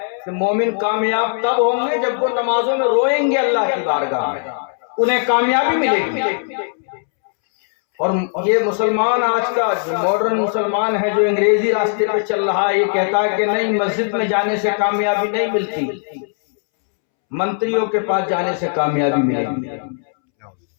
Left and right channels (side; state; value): right; silent; 67 dB below the other